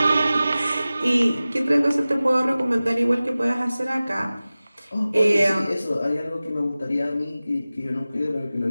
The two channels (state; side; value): inverted; both; correlation -0.97